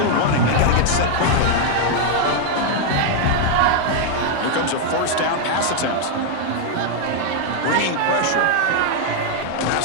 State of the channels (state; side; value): different; both; correlation 0.00